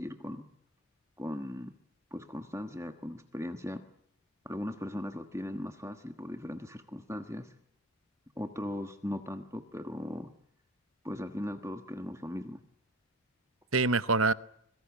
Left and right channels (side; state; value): both; normal; correlation 0.39